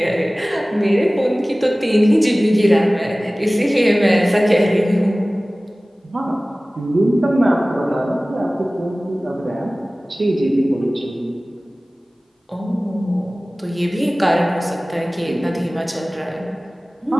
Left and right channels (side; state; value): both; normal; correlation 0.98